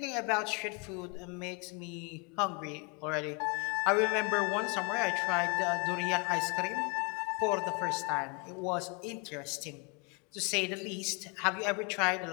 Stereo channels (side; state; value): right; quieter; 33.1 dB